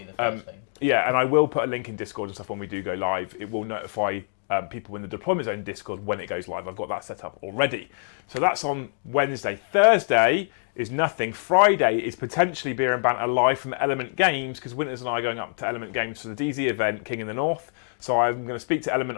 be the first thing. Yeah, and I will put a link in Discord and stuff when we do go live. It will notify people in the deployment zone Discord when it goes live. I've got that set up already. So that's on Wednesday. Thursday is nothing. Friday is potentially Beer and Banter live from Element Games, because Winters and I are going up to Element Games for the DZ event, King in the North. So I'm going to speak to Element.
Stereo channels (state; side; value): silent; right; digital silence